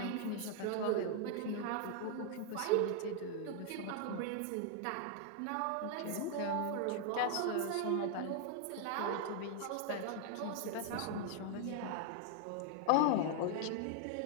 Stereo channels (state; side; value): different; both; correlation 0.00